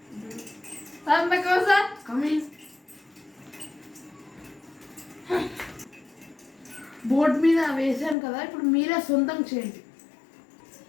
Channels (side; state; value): right; drops out; at 8.2 s